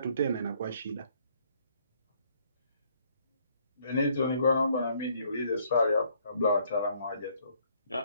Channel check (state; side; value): inverted; both; correlation -0.66